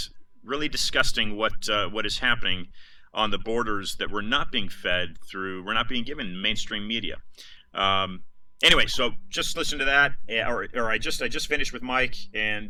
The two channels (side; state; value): both; identical; correlation 1.00